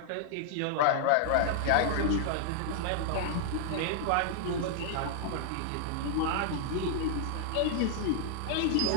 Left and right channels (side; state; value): both; different; correlation -0.01